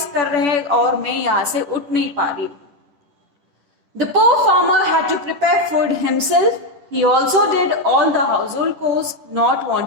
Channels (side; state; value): left; late; 10 ms